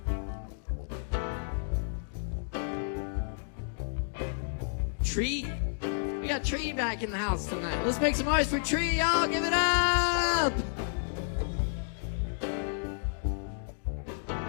Tree. We got Tree back in the house tonight. Let's make some noise for Tree, y'all. Give it up.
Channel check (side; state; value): right; silent; digital silence